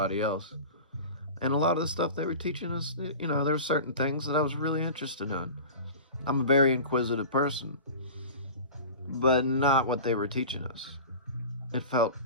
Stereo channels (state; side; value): inverted; both; correlation -0.35